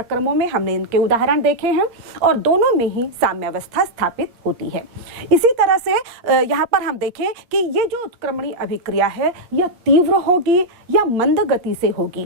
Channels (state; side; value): late; left; 8.5 ms